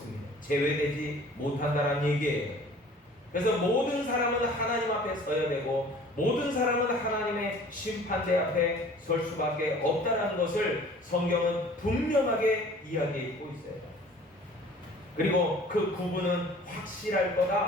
제외되지 못한다는 얘기예요. 그래서 모든 사람은 하나님 앞에 서야 되고 모든 사람은 하나님의 심판대 앞에 설 수밖에 없다는 것을 성경은 분명하게 이야기하고 있어요. 그리고 그 구분은 확실할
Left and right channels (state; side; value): normal; both; correlation 0.49